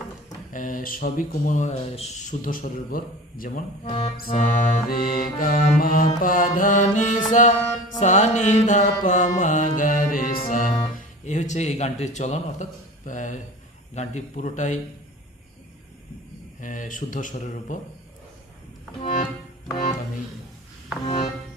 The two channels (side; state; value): both; normal; correlation 0.37